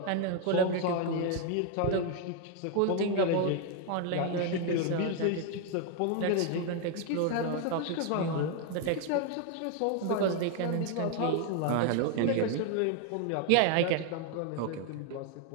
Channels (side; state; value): both; different; correlation 0.01